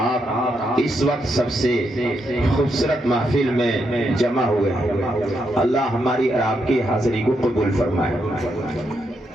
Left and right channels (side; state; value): both; normal; correlation 0.80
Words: اس وقت سب سے خوبصورت محفل میں جمع ہوئے ہیں. اللہ ہماری اور آپ کی حاضری کو قبول فرمائے.